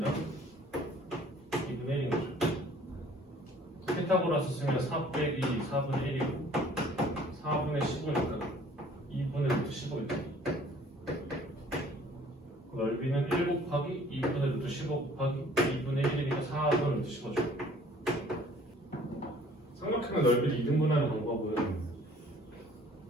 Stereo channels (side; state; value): both; normal; correlation 0.54